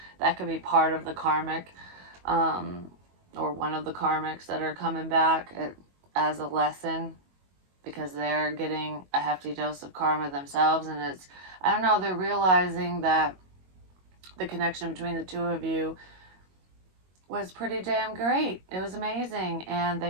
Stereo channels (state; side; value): late; left; 22 ms